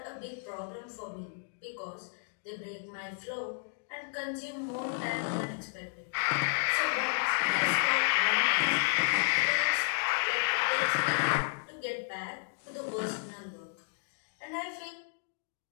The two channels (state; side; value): silent; right; digital silence